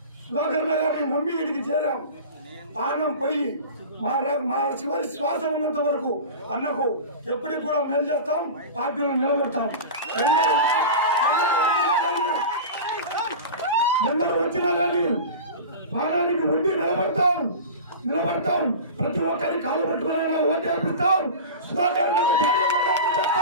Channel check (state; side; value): inverted; both; correlation -0.31